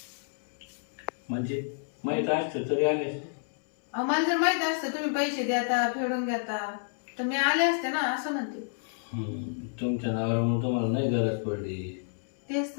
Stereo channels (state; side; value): silent; right; 58 dB below the other